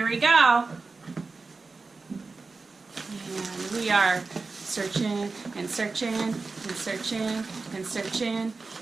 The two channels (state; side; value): quieter; left; 4.0 dB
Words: we go. And we are searching and searching and searching and searching.